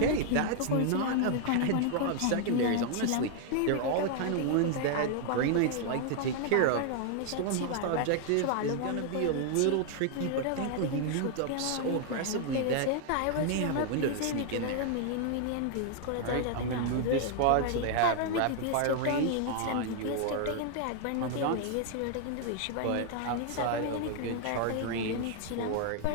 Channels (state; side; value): different; both; correlation 0.00